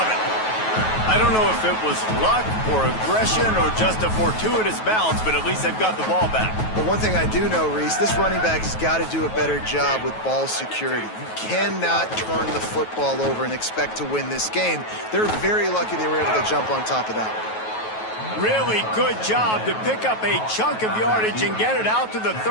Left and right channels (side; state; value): right; late; 9.3 ms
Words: it. I don't know if it was luck or aggression or just a fortuitous bounce, but at least they've got the ball back. But one thing I do know, Reese, this running back has got to do a better job with ball security. You cannot turn the football over and expect to win this game. They're very lucky they were able to jump on top of that one. Really good job to pick up a chunk of yardage and get it out to the